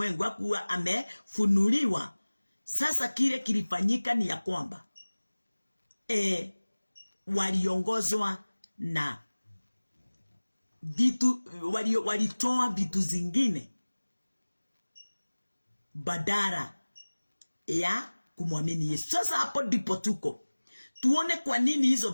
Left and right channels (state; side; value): inverted; both; correlation -1.00